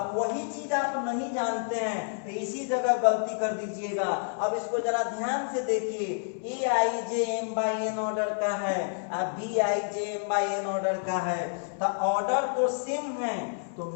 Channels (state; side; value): silent; right; 59 dB below the other